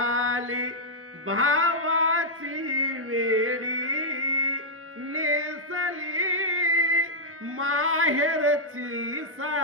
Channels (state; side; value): normal; both; correlation -0.06